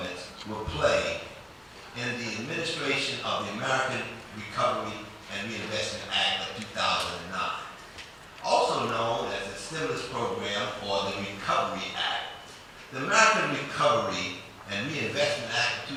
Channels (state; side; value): identical; both; correlation 1.00